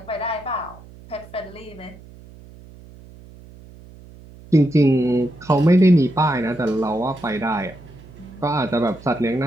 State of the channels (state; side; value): noise; right; hum, 21 dB below the sound